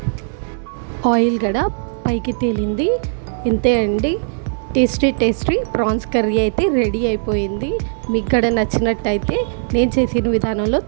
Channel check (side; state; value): left; silent; 67 dB below the other